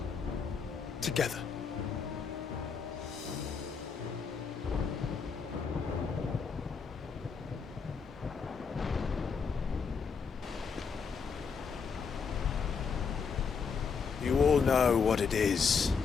Together. You all know what it is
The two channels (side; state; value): right; quieter; 5.8 dB